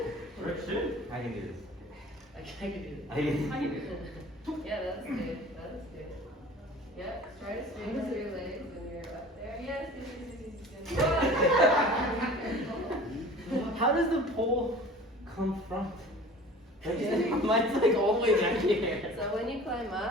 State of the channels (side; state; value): both; normal; correlation 0.43